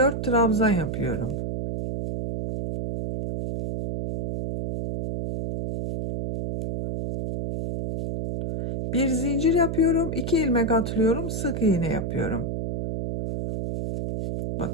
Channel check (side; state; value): right; noise; hum, 3 dB below the sound